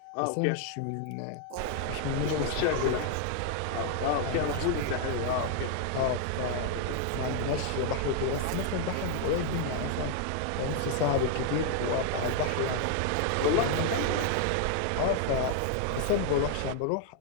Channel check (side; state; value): both; different; correlation 0.00